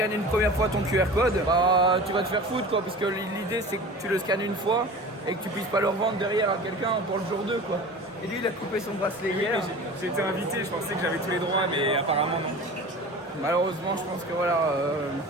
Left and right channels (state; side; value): normal; both; correlation 0.37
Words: une première fois ton QR code, bah tu vas te faire foutre quoi, parce que l'idée c'est que tu le scannes une fois et que tu puisses pas le revendre derrière à quelqu'un pour le jour 2 quoi. Et lui il a coupé son bracelet hier. J'ai été invité, je pensais que j'avais tous les droits, mais apparemment non. Malheureusement je pense que voilà...